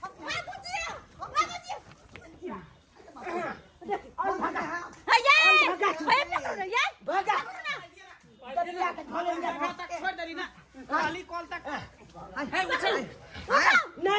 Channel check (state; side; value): identical; both; correlation 1.00